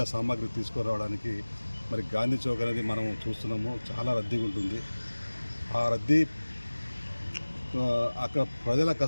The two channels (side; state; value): both; inverted; correlation -1.00